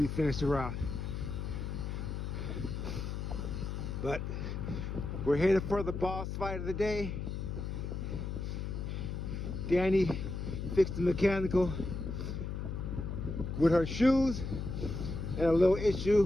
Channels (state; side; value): noise; left; hum, 4 dB below the sound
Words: finish the route. But we're headed for the boss fight of the day. Danny fixed the mechanical with her shoes and a little